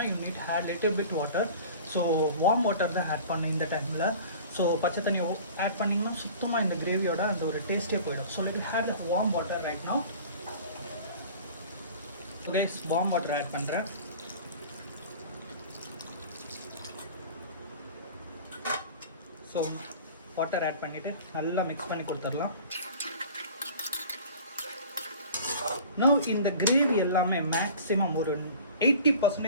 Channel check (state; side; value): inverted; both; correlation -0.42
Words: you need had little bit water. So warm water தான் ஆட் பண்ணேன் இந்த டைமில். ஸோ பச்சை தண்ணி ஆட் பண்ணிங்கன்னா சுத்தமாக இந்த கிரேவியோட அந்த ஒரு டேஸ்ட்டே போயிடும். So let we heat the warm water right now. Okay, warm water add பண்ணுறேன். ஸோ வாட்டர் ஆட் பண்ணிவிட்டு நல்லா மிக்ஸ் பண்ணி கொடுத்துடலாம். Now இந்த கிரேவி எல்லாமே மேக்ஸிமம் ஒரு